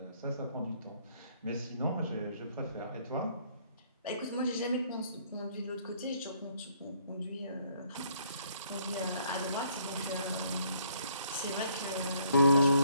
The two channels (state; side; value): inverted; both; correlation -0.66